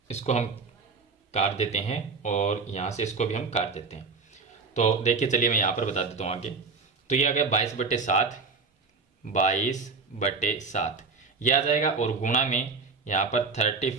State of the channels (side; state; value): left; quieter; 4.5 dB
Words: इसको हम काट देते हैं और यहाँ से इसको भी हम काट देते हैं। तो देखिए चलिए मैं यहाँ पर बता देता हूँ आगे। तो ये आ गया 22/7, 22/7 ये आ जाएगा, और गुणा में यहाँ पर